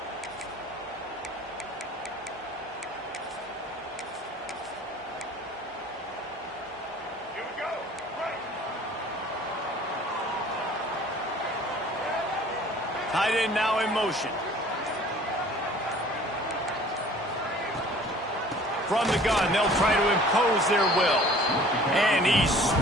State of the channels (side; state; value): both; normal; correlation 0.50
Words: Tight end now in motion. From the gun, they'll try to impose their will. And he's